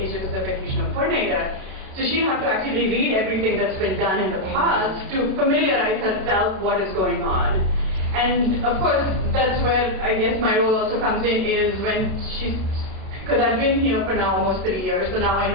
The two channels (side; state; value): left; late; 32 ms